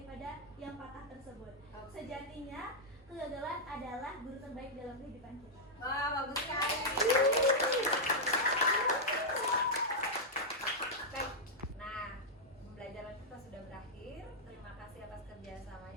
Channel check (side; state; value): both; normal; correlation -0.06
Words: yang patah tersebut. Oke. Sejatinya kegagalan adalah guru terbaik dalam kehidupan kita. Wah, bagus sekali. Baik. Nah, pembelajaran kita sudah berakhir. Terima kasih atas